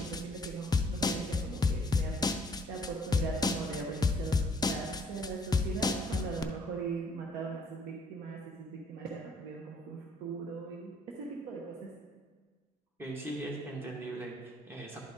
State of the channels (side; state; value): both; normal; correlation 0.63